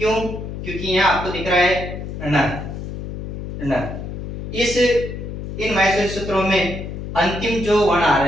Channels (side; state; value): left; noise; hum, 7 dB below the sound